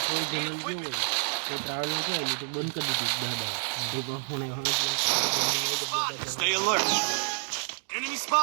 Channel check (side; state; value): left; silent; 59 dB below the other